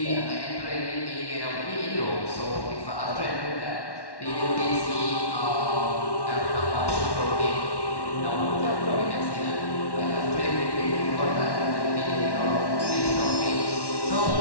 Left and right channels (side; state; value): right; late; 1.1 ms